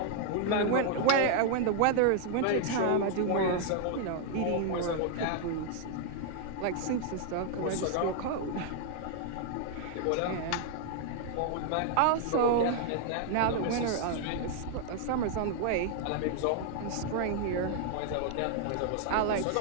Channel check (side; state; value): both; different; correlation 0.00